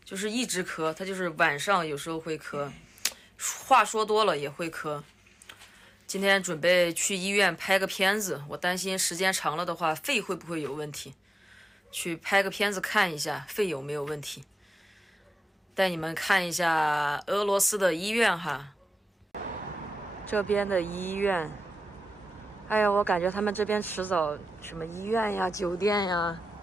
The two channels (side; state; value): both; normal; correlation 0.94